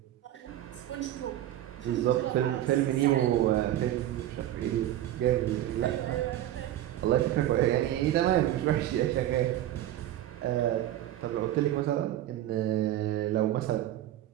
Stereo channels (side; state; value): left; quieter; 13.1 dB